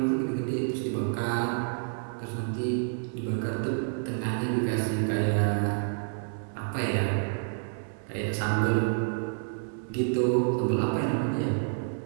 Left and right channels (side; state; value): left; silent; 59 dB below the other